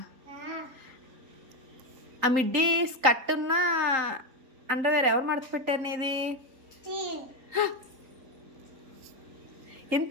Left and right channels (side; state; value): left; late; 3.8 ms